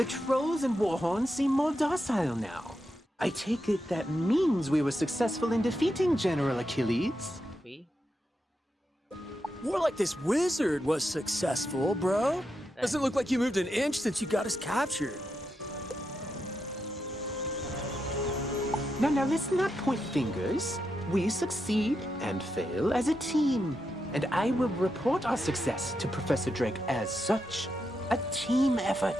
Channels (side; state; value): both; normal; correlation 0.85